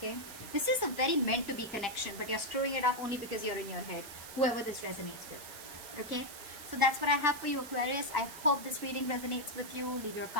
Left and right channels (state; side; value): noise; right; hiss, 13 dB below the sound